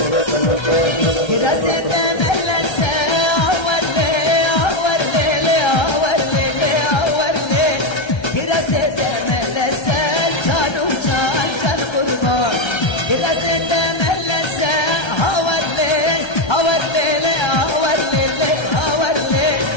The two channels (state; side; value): late; right; 1.3 ms